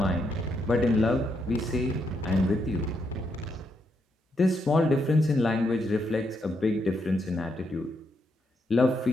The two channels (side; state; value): both; normal; correlation 0.79